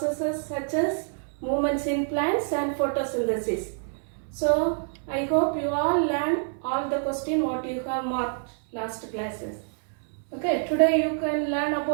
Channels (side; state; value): left; silent; 60 dB below the other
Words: such as movements in plants and photosynthesis. So I hope you all learned all the question what you have marked last classes. Okay, today you can learn